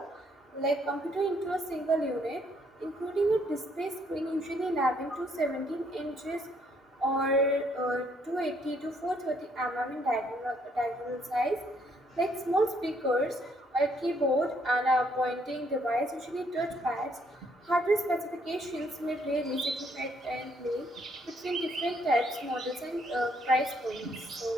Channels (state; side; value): normal; both; correlation 0.69